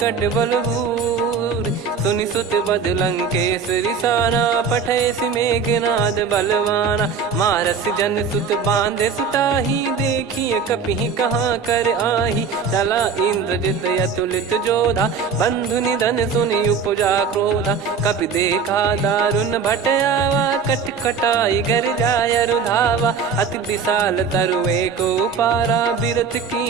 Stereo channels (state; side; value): quieter; left; 5.8 dB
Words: बलभूर। सुनि सुत बद लंकेश रिसाना, पठयसि मेघनाद बलवाना। मारस जन सुत बांधे सुताही, देखिए कपिहि कहाँ कर आही। चला इंद्रजित अतुलित जोधा, बंधु निधन सुनि उपजा क्रोधा। कपि देखा दारुण भट आवा, कट कटाई घर जाय रुधावा। अति विशाल तरुए को पारा, बिरत